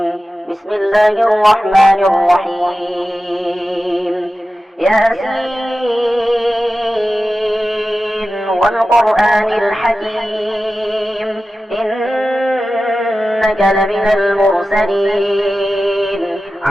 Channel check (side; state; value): both; normal; correlation 0.94